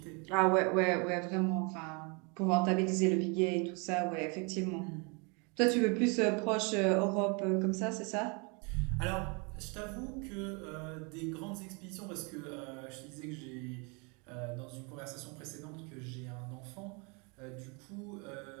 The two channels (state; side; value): quieter; left; 32.5 dB